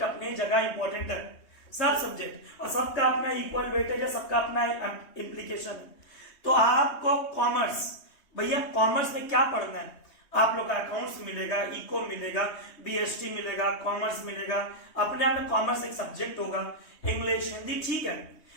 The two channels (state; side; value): late; right; 3.2 ms